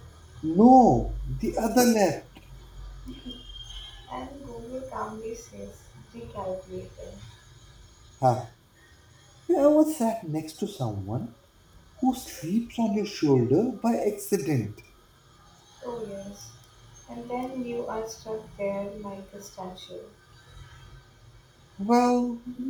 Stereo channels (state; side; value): identical; both; correlation 1.00